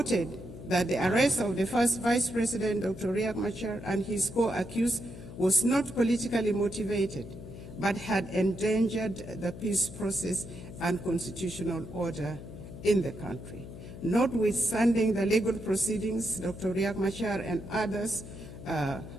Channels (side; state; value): left; noise; hum, 13 dB below the sound